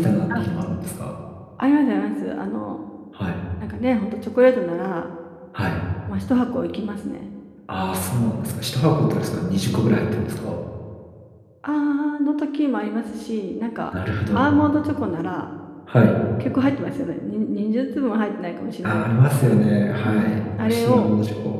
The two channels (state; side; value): identical; both; correlation 1.00